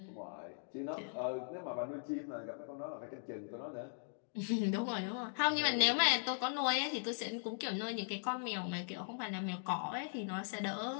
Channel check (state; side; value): silent; right; digital silence